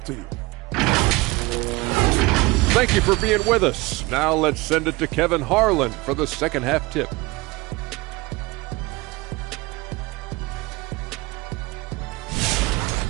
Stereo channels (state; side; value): quieter; left; 22.6 dB